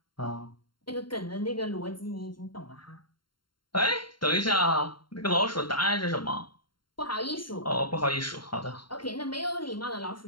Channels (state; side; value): late; right; 0.72 ms